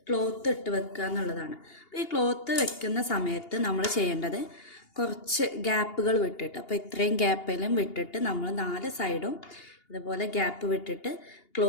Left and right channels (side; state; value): right; late; 2.8 ms